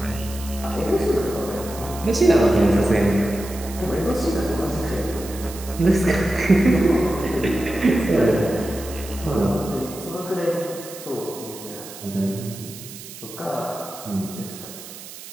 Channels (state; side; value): noise; right; hiss, 14 dB below the sound